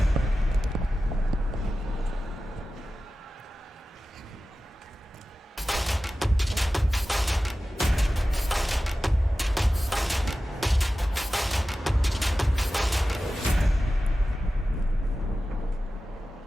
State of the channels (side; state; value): both; normal; correlation 0.95